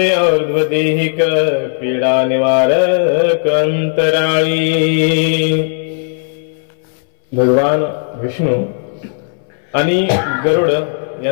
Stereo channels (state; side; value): silent; right; 67 dB below the other